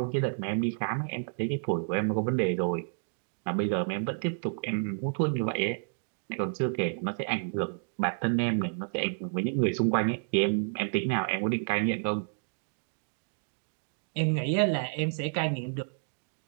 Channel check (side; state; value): left; silent; digital silence